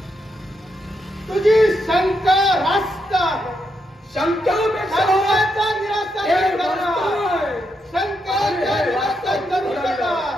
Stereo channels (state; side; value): normal; both; correlation 0.81